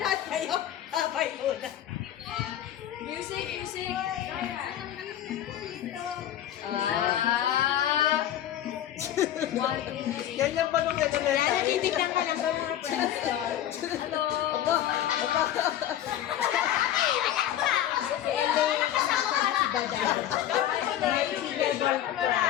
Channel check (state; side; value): quieter; right; 11.6 dB